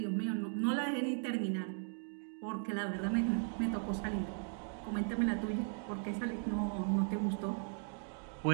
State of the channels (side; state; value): left; silent; 53 dB below the other